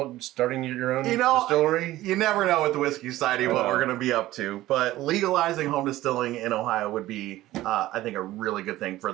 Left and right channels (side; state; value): left; quieter; 16.0 dB